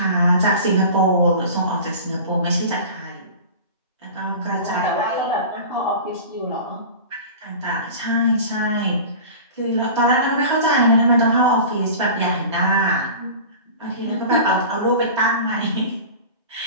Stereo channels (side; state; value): both; inverted; correlation -0.36